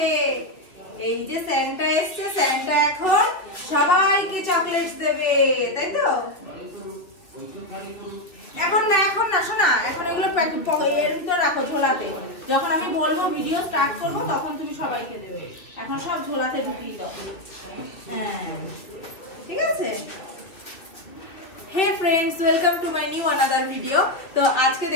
এই যে স্যান্টা এসছে, স্যান্টা এখন সবাইকে চকলেটস দেবে, তাই তো? এখন না শোনা, এখন এগুলো এর ভিতর রাখো ঝোলাতে। যখন আমি বলবো ভিডিও স্টার্ট করবো তখন তুমি সবাইকে দেবে। এখন সব ঝোলাতে ঢুকিয়ে দাও। হ্যাঁ ঠিক আছে। Hey friends, welcome to my new another video. তো আজকে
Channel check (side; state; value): right; late; 2.3 ms